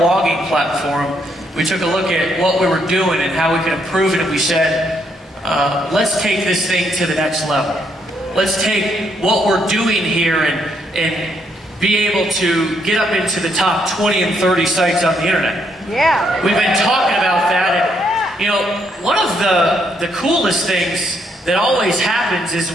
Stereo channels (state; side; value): normal; both; correlation 0.74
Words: platform. We took a look at what we were doing and how we could improve it, and we said, let's take this thing to the next level. Let's take what we're doing here and be able to get up into the top 20 and 30 sites on the internet. Yeah. We've been talking about that, and you know, one of the coolest things that always happens is